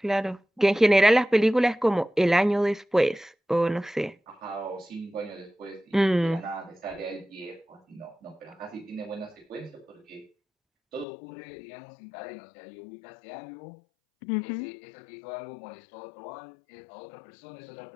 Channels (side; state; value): right; drops out; at 11.1 s